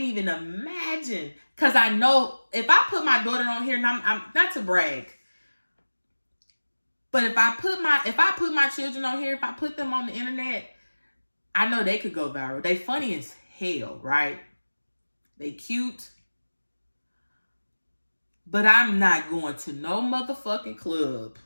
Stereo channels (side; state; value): both; inverted; correlation -1.00